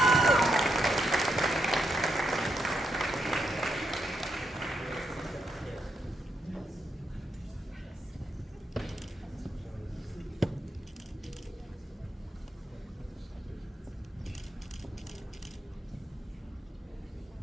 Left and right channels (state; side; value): normal; both; correlation 0.81